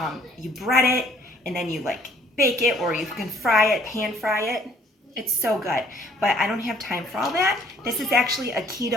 you bread it and then you like bake it, or you can fry it, pan fry it. It's so good, but I don't have time for all that. This is actually a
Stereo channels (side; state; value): both; normal; correlation 0.60